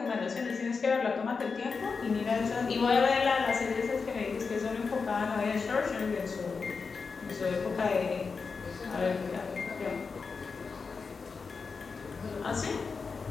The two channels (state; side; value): quieter; right; 5.0 dB